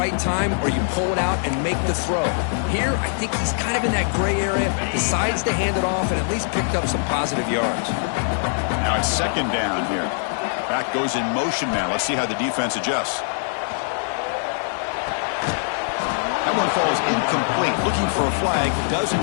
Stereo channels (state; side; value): silent; right; digital silence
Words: time or you pull it out and make the throw. Here, I think he's kind of in that gray area, decides to hand it off and at least picked up some positive yards. Now it's 2nd down here. Back goes in motion now. Let's see how the defense adjusts. That one falls incomplete. Looking for a flag. Doesn't